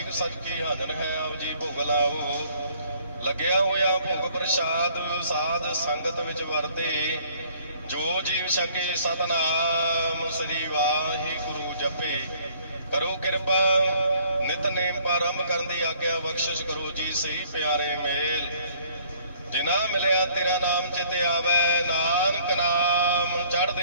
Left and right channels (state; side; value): inverted; both; correlation -0.60